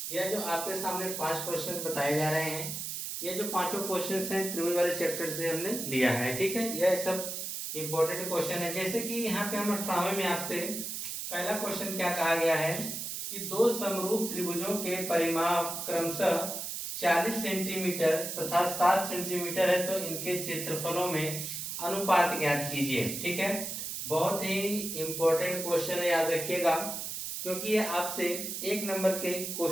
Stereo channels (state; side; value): noise; right; hiss, 5 dB below the sound